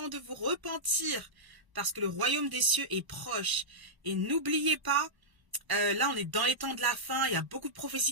de vous repentir parce que le royaume des cieux est proche. Et n'oubliez pas, là, on est dans les temps de la fin. Il y a beaucoup de prophéties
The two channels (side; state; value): left; late; 1.0 ms